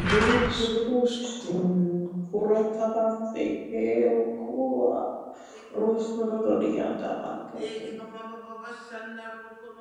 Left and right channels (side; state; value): both; identical; correlation 1.00